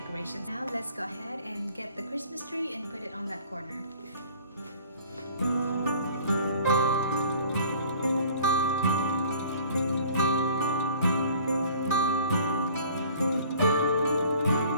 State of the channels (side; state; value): both; inverted; correlation -0.50